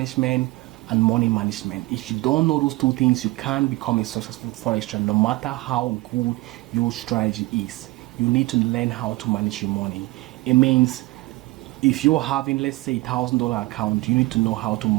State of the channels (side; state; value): left; quieter; 21.1 dB